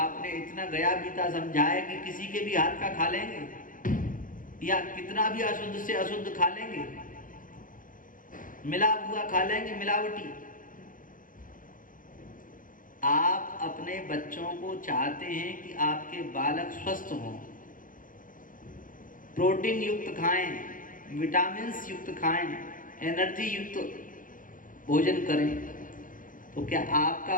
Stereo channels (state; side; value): late; right; 0.39 ms